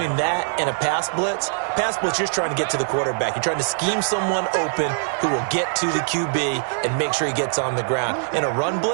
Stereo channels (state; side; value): silent; left; 62 dB below the other